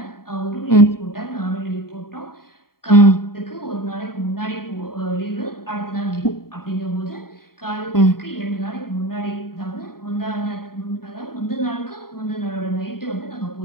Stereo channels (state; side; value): late; right; 0.93 ms